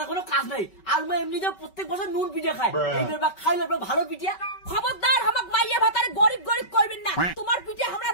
কোনো কাজ নাই আর মই এমনিতে প্রত্যেক বছর নুন পিঠে খায় এইবার বা খাইলে ভালো পিঠা খবরদার আমাক মাইয়া ভাতারে গরিব গরিব কইবেন না তোমার পিঠে আমরা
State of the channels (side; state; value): right; late; 5.3 ms